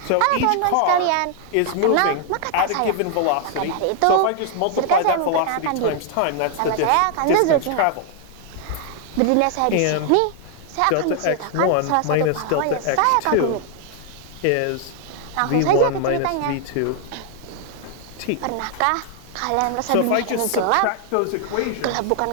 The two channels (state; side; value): different; both; correlation 0.00